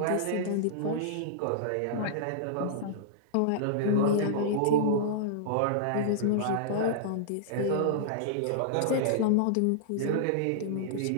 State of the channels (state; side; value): different; both; correlation -0.02